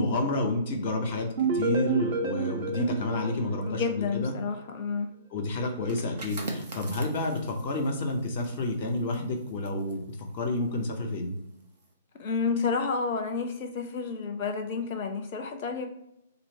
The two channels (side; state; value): both; inverted; correlation -0.45